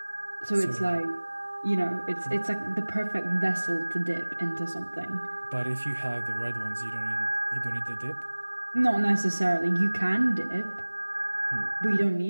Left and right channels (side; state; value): both; inverted; correlation -1.00